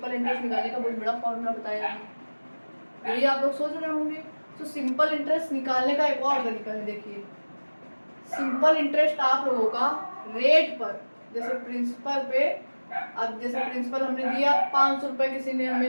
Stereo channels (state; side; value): inverted; both; correlation -1.00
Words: इंटरेस्ट निकालने का बहुत बड़ा फॉर्मूला बताया है, यही आप लोग सोच रहे होंगे। तो सिंपल इंटरेस्ट निकालने का एक और तरीका है, देखिए सिंपल इंटरेस्ट आप लोगों का रेट पर, जैसे प्रिंसिपल पे, अब जैसे प्रिंसिपल हमने दिया 500 रुपये किसी ने